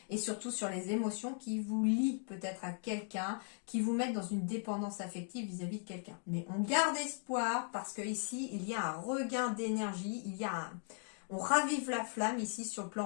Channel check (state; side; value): silent; right; 52 dB below the other